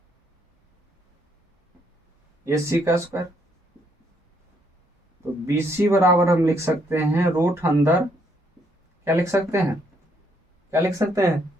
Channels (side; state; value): both; normal; correlation 0.71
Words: ए सी का स्क्वायर। तो बी सी बराबर हम लिख सकते हैं रूट अंदर, क्या लिख सकते हैं? क्या लिख सकते हैं?